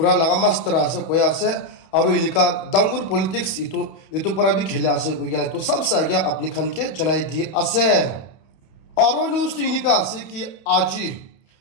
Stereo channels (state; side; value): late; right; 31 ms